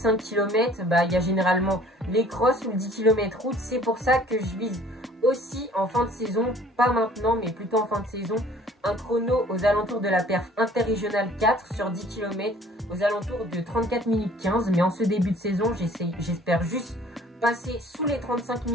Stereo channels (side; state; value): both; normal; correlation 0.54